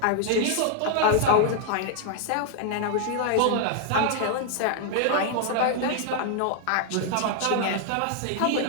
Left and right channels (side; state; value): both; different; correlation 0.00